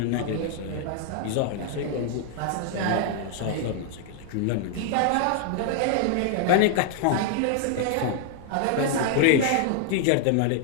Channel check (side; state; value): both; different; correlation 0.00